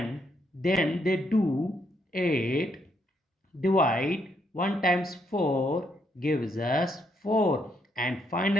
then they do 8 divide 1 times 4 gives us 4, and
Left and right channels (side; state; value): both; normal; correlation 0.75